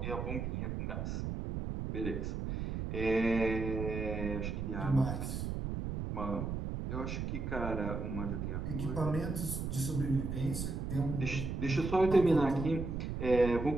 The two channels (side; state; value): right; noise; rumble, 3 dB below the sound